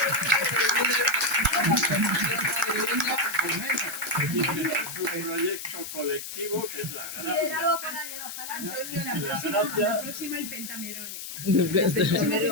Es un proyecto colectivo que es la Liderado por alguien, ojalá. Antonio, la próxima el Pentamerone.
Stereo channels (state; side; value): noise; left; hiss, 8 dB below the sound